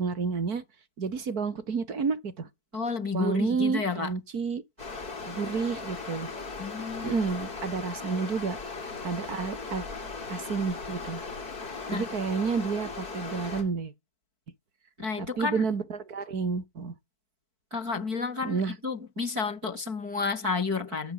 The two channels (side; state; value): left; late; 4.5 ms